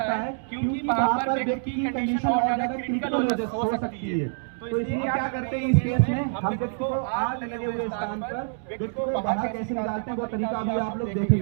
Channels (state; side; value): silent; left; digital silence